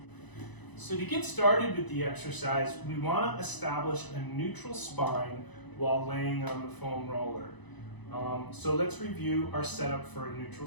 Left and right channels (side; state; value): right; late; 1.0 ms